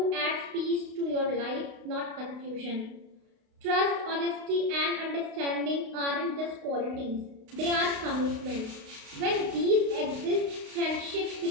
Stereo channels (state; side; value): late; left; 32 ms